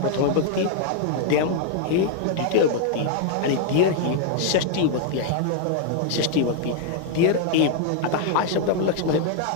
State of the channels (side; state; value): both; different; correlation 0.00